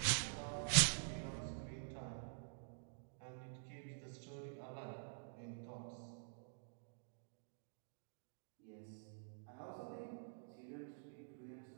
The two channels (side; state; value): left; silent; digital silence